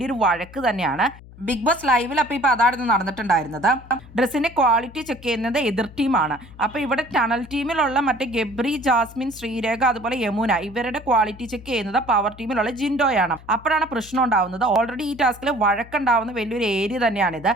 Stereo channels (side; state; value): left; noise; hum, 20 dB below the sound